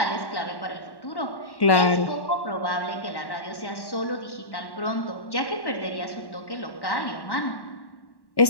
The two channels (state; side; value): late; right; 1.1 ms